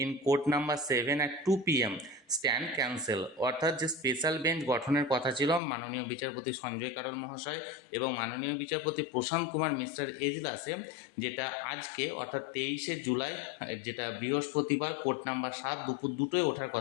in court number 7 at 2 p.m. Stand cancel. অর্থাৎ যে স্পেশাল বেঞ্চ গঠনের কথা ছিল মাননীয় বিচারপতি সঞ্জয় কারোল মহাশয় এবং মাননীয় বিচারপতি প্রশান্ত কুমার মিশ্রের এজলাসে, যেটা আজকে অর্থাৎ 23শে জুলাই, যেটা বৃহস্পতিবার, কোর্ট নাম্বার 7 দুপুর 2টোয় ওঠার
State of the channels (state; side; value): drops out; right; at 5.6 s